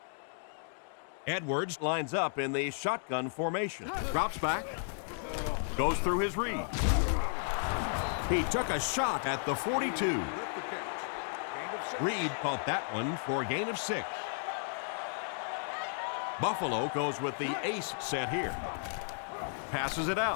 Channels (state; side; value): silent; right; digital silence